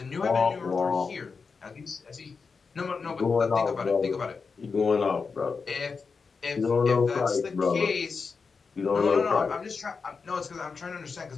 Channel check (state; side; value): quieter; right; 5.0 dB